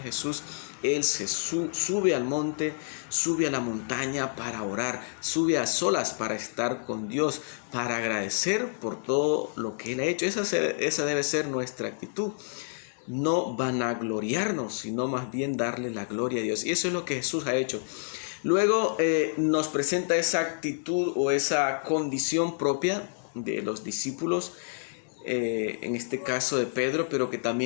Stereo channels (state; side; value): silent; right; digital silence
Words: Jesús, Él se sube al monte, sube a la montaña para orar, sube a solas para estar con Dios, para agradecer por todo lo que Él ha hecho. Esa debe ser nuestra actitud. No vanagloriarnos, sino más bien darle la gloria a Dios. Y eso es lo que Jesús ha hecho. Luego nos presenta esa actitud o esa condición propia de los discípulos, en este caso de Pedro, pero que